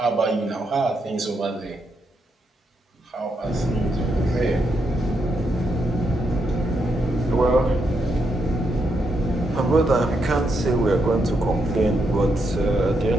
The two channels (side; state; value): both; normal; correlation 0.80